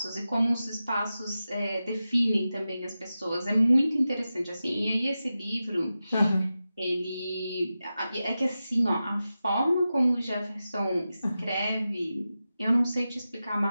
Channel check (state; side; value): inverted; both; correlation -0.93